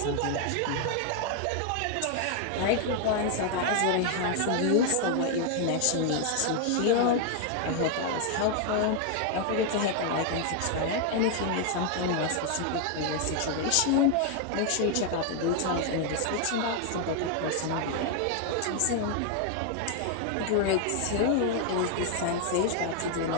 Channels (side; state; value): both; different; correlation 0.00